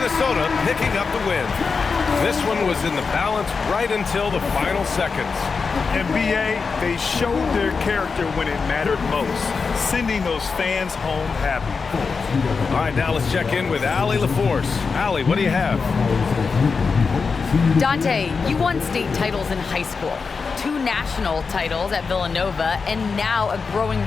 picking up the win. This one was in the balance right until the final seconds. NBA, they showed their character when it mattered most, sending those fans home happy. All right, now let's check in with Allie LaForce. Allie, what do you have? Dante, you won state titles in high school, 2 national titles at Villanova, and now a growing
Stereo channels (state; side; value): quieter; right; 5.0 dB